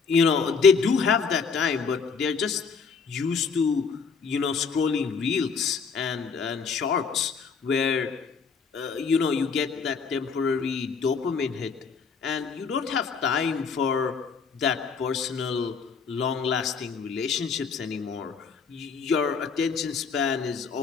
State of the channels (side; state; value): right; quieter; 5.5 dB